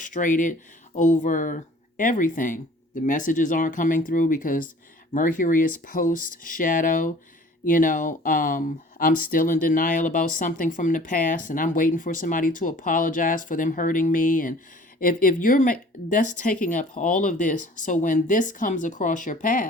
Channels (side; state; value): both; normal; correlation 0.49